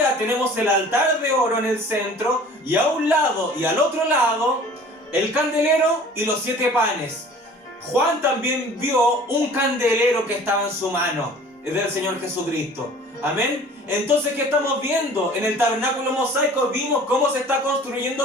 tenemos el altar de oro en el centro y a un lado y al otro lado el candelero y los 7 panes. Juan también vio un candelero que estaba en su mano, es del Señor Jesucristo. Amén. Entonces, ¿qué estamos viendo? En el tabernáculo mosaico vimos cómo se está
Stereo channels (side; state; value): both; normal; correlation 0.47